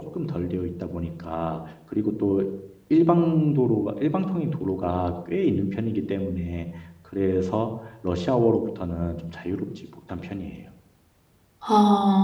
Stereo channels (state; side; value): identical; both; correlation 1.00